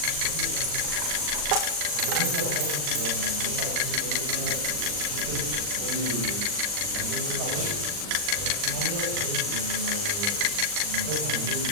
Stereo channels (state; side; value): late; left; 40 ms